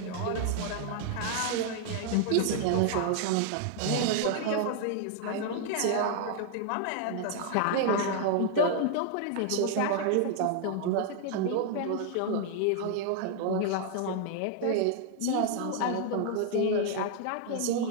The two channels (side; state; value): both; different; correlation 0.00